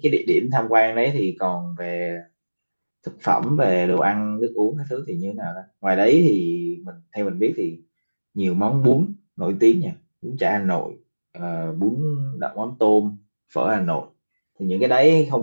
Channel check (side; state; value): both; inverted; correlation -1.00